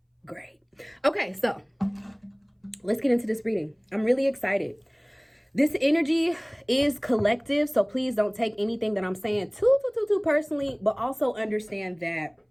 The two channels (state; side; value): identical; both; correlation 1.00